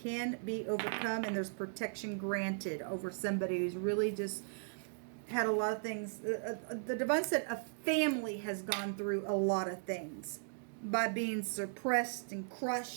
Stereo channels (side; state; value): left; silent; digital silence